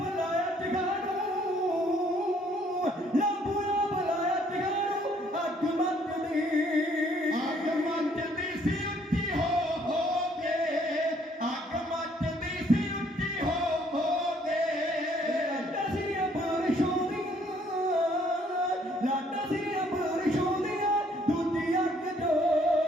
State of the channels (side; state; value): both; normal; correlation 0.64